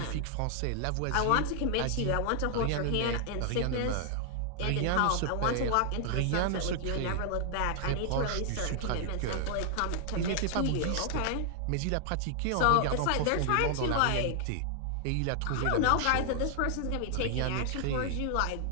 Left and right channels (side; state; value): both; different; correlation 0.00